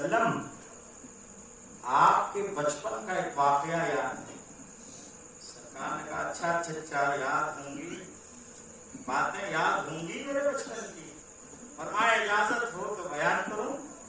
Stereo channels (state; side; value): identical; both; correlation 1.00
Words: آپ کے بچپن کا ایک واقعہ یاد ہے؟ سرکار نے کہا اچھا چچا یاد ہوں گی، باتیں یاد ہوں گی میرے بچپن کی، فرمایا اجازت ہو تو بیان کروں۔